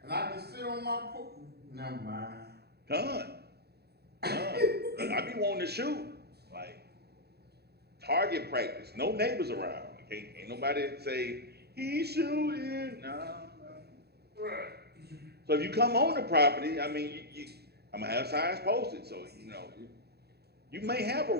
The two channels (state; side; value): late; left; 0.47 ms